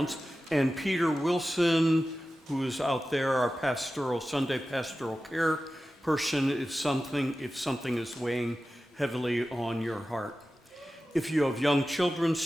And Peter Wilson, who is out there, our Sunday pastoral care person, if something is weighing heavily on your heart. If you have young children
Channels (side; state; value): both; normal; correlation 0.94